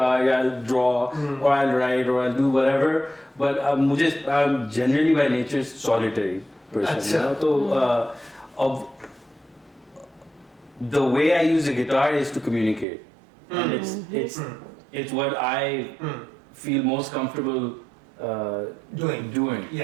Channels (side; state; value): left; drops out; at 12.9 s